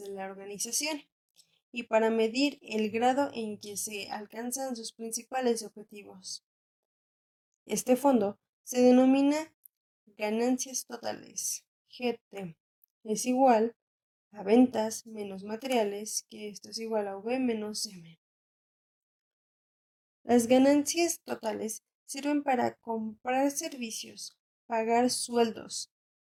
la organización y para medir el grado en que se alcanzan sus principales objetivos. Este fondo se denomina ganancias totales. GT es igual a ventas menos materiales, que esto es igual a V menos M. Las ganancias totales sirven para comprar servicios, pagar sueldos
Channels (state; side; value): identical; both; correlation 1.00